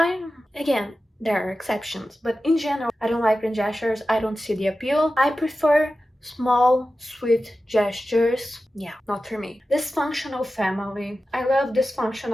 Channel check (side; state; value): both; normal; correlation 0.93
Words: again, there are exceptions, but in general, I don't like grand gestures. I don't see the appeal. I prefer small, sweet gestures. Yeah, not for me. Dysfunctional Family. I love